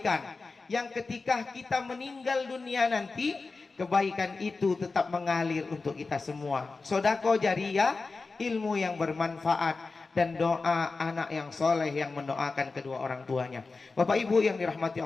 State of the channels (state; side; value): quieter; right; 4.0 dB